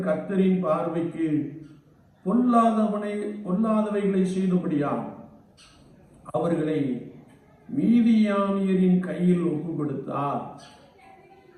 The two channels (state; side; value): identical; both; correlation 1.00